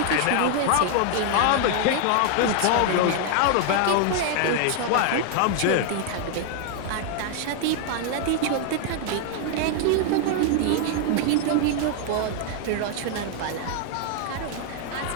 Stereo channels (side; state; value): both; different; correlation 0.00